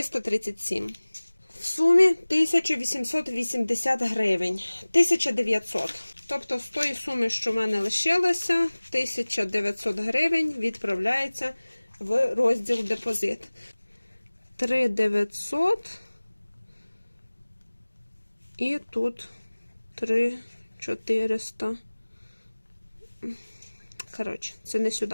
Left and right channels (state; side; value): inverted; both; correlation -1.00